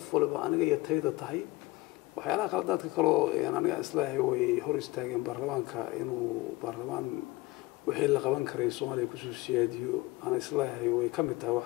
walba aniga iyo tayada tahay waxyaalaha qaladaadka kale oo aniga islaahay way hor istaageen baarlamaanka inuu baarlamaan wixii la qaban karay Soomaaliya ku soo siyaadiyo ana islaahay way ka mid tahay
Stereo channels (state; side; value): quieter; right; 20.4 dB